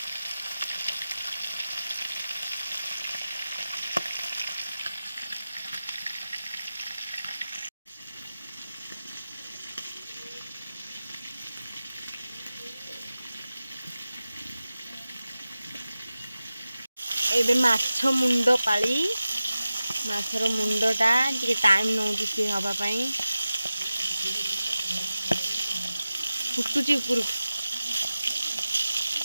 एबे माछ मुंड पाली माछर मुंडटा टिके टाइम नौची सी हवा पाई फुटुची ऊपर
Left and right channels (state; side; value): inverted; both; correlation -0.95